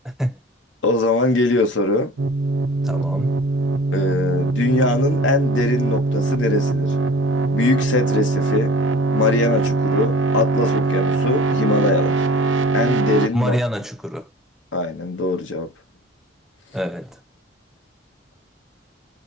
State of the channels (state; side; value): normal; both; correlation 0.43